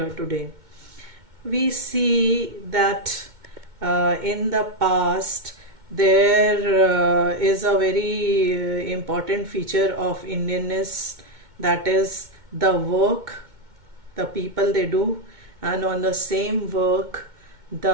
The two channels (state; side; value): late; left; 2.2 ms